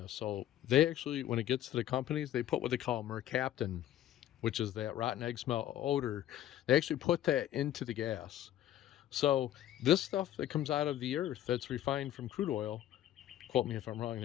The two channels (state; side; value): quieter; right; 12.2 dB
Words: So they actually, when it gets to the companies, they put what they call mercaptan, which is that rotten egg smell odor. They actually put that into the gas. So this stuff that comes out of the earth that's refined from crude oil, quote me if I'm wrong